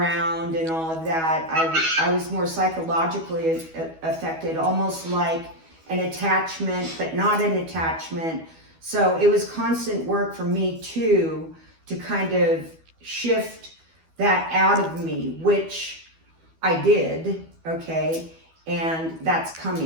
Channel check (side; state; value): left; late; 12 ms